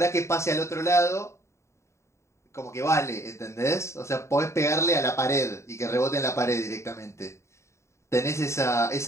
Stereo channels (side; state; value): right; late; 0.14 ms